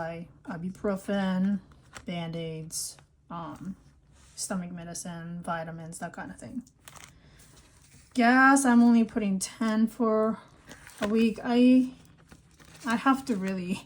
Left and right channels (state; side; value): identical; both; correlation 1.00